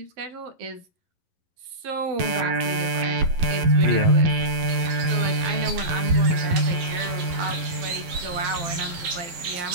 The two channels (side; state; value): left; late; 11 ms